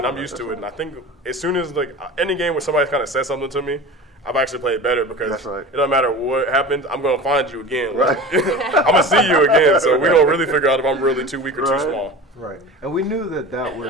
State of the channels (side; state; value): both; normal; correlation 0.34